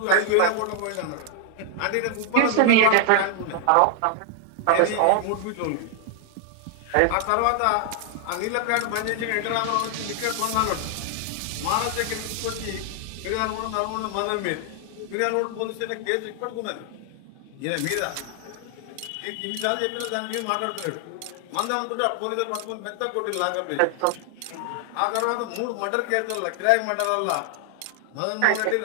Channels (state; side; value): different; both; correlation 0.00